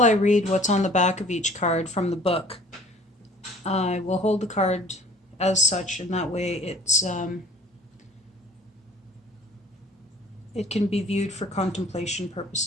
I read what's on the back of each card from the book, I will hold the card as such, and that way it can be viewed for contemplation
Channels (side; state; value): both; normal; correlation 0.51